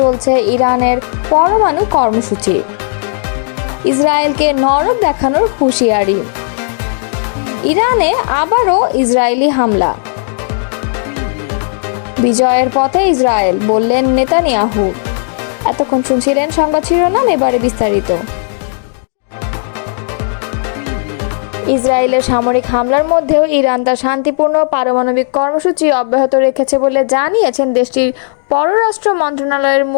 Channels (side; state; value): right; silent; 63 dB below the other